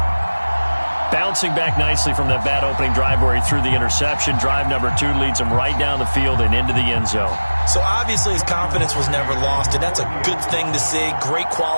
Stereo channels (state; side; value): inverted; both; correlation -1.00